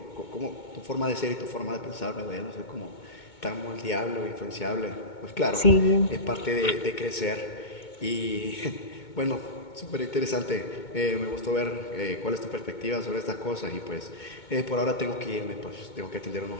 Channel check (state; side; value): late; right; 2.2 ms